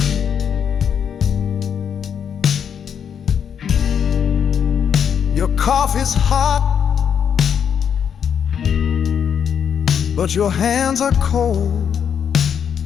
Your coffee's hot, but your hands are cold.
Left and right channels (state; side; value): quieter; right; 7.8 dB